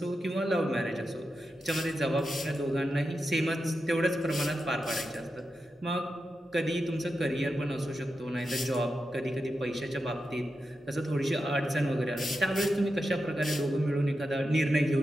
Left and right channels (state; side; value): normal; both; correlation 0.89